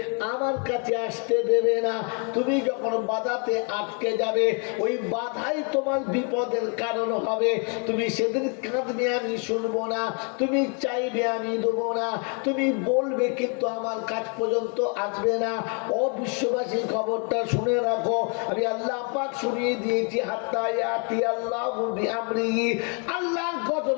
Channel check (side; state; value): right; quieter; 38.1 dB